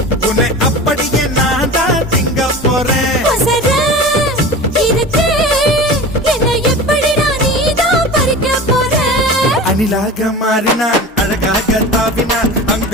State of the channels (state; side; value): normal; both; correlation 0.34